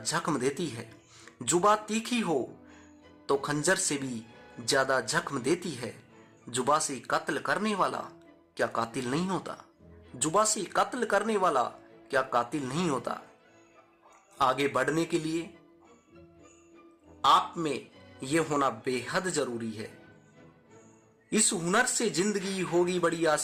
देती है। जुबा तीखी हो तो खंजर से भी ज्यादा जख्म देती है। जुबा से कत्ल करने वाला क्या कातिल नहीं होता, जुबा से कत्ल करने वाला क्या कातिल नहीं होता। आगे बढ़ने के लिए आप में यह होना बेहद जरूरी है। इस हुनर से जिंदगी होगी बड़ी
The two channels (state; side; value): identical; both; correlation 1.00